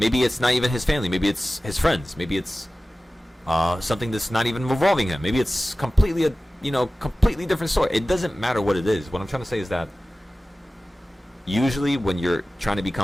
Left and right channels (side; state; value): both; normal; correlation 0.96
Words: Maybe it's not even his family. Maybe it's his friends. Maybe it's something that's not even revolving him. Maybe it's completely completely different story. It doesn't matter what it is. What I'm trying to say is that usually when you're trying to